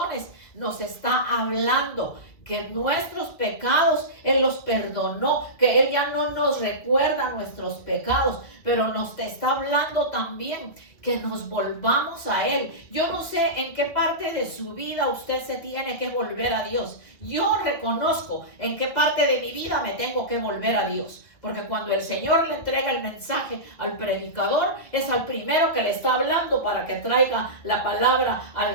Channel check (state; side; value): late; right; 2.2 ms